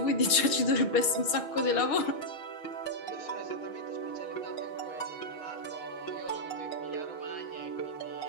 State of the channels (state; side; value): late; right; 6.3 ms